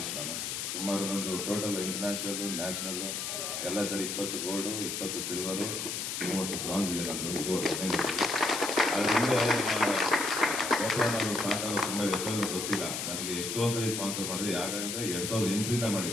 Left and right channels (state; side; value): noise; left; hiss, 3 dB below the sound